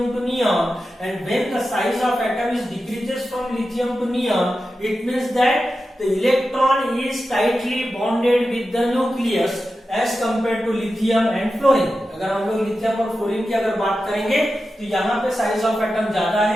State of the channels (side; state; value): both; normal; correlation 0.92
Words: to neon. And when the size of atom is decreases from lithium to neon, it means that the electron is tightly bonded with the nucleus as compared to lithium and fluorine. अगर हम लोग लिथियम और फ्लोरीन की अगर बात करेंगे तो यहाँ पे साइज ऑफ एटम ज्यादा